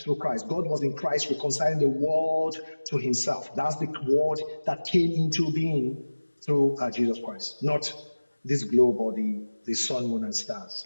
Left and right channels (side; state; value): both; inverted; correlation -1.00